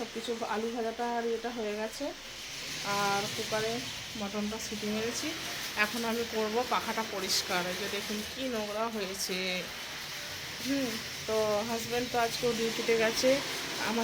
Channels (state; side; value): identical; both; correlation 1.00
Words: কিছু, আলু ভাজাটা আর এটা হয়ে গেছে, আর কুকারে মটনটা সিটি মেরেছি। এখন আমি করব পাখাটা পরিষ্কার। এই যে দেখুন কি নোংরা হয়েছে। তো হাজব্যান্ড তো আজকেও ডিউটিতে গেছে।